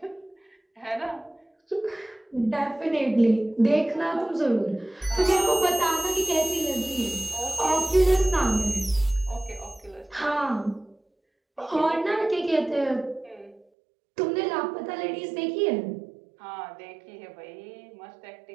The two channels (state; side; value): drops out; left; at 13.7 s